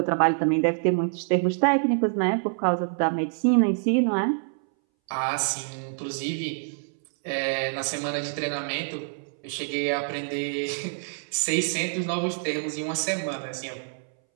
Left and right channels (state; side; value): silent; left; 61 dB below the other